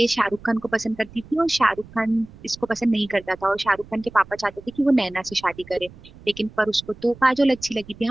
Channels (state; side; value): noise; right; rumble, 21 dB below the sound